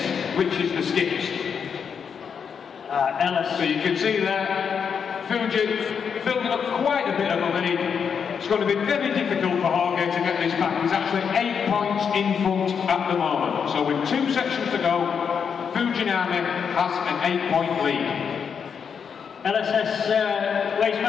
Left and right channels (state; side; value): quieter; right; 6.8 dB